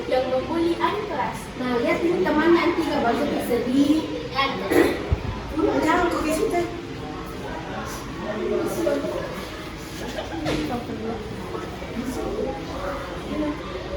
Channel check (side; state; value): both; identical; correlation 1.00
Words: yang membuli adik kelas. Nah, lihat ini teman nanti nggak bagus sedih. Jangan kau ke situ.